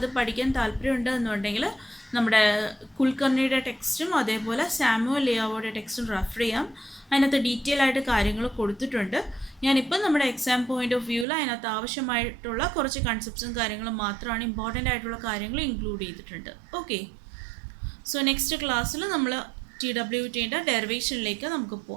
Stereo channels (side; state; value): left; drops out; at 11.2 s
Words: പഠിക്കാൻ താല്പര്യമുണ്ട് എന്നുണ്ടെങ്കിൽ നമ്മുടെ കുൽക്കർണിയുടെ ടെക്സ്റ്റും അതേപോലെ സാമുവൽ ലിയാവോയുടെ ടെക്സ്റ്റും റെഫർ ചെയ്യാം. അതിനകത്ത് ഡീറ്റെയിൽ ആയിട്ട് കാര്യങ്ങൾ കൊടുത്തിട്ടുണ്ട്. ഞാനിപ്പോൾ നമ്മുടെ എക്സാം പോയിന്റ് ഓഫ് വ്യൂവിൽ അതിനകത്ത് ആവശ്യമായിട്ടുള്ള കുറച്ച് കൺസെപ്റ്റ്സും കാര്യങ്ങളും മാത്രമാണ്, ഇമ്പോർട്ടൻ്റ് ആയിട്ടുള്ള കാര്യങ്ങൾ ഇൻക്ലൂഡ് ചെയ്തിട്ടുണ്ട്. ഓക്കെ, സോ നെക്സ്റ്റ് ക്ലാസ്സിൽ നമ്മൾ TWTയുടെ ഡെറിവേഷനിലേക്ക് നമുക്ക്